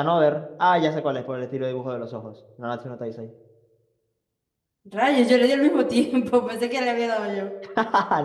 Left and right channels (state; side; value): identical; both; correlation 1.00